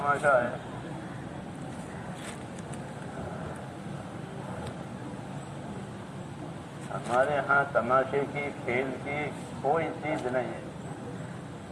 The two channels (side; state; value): both; identical; correlation 1.00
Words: ہے. ہمارے ہاں تماشے کی، کھیل کی کوئی چیز نہیں ہے.